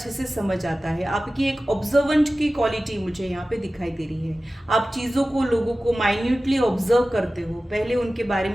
से समझ आता है, आपकी एक ऑब्जर्वेंट की क्वालिटी मुझे यहाँ पे दिखाई दे रही है। आप चीज़ों को, लोगों को माइन्यूटली ऑब्जर्व करते हो, पहले उनके बारे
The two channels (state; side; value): normal; both; correlation 0.96